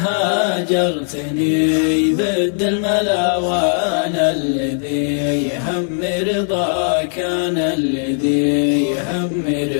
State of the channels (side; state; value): right; silent; 67 dB below the other